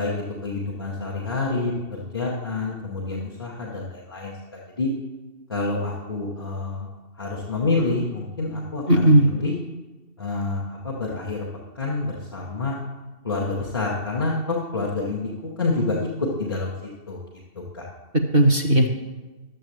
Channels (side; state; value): left; late; 2.7 ms